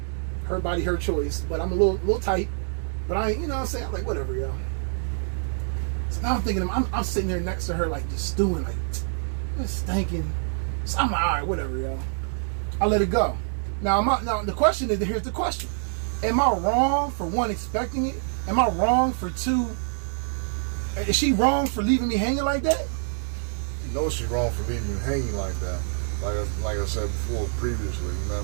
Her body, her choice. But I'm a little tight. But I ain't, you know what I'm saying? I'm like, whatever, yo. So now I'm thinking, I'm sitting there next to her, like, just stewing, like, just stinking. So I'm like, all right, whatever, yo. I let it go. Now the question is, here's the question. Am I wrong for one, expecting it? Am I wrong for two? Is she wrong for leaving me hanging like that? You know she's wrong for leaving you hanging like that. Like I said before, previously, you know what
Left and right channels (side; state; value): left; silent; digital silence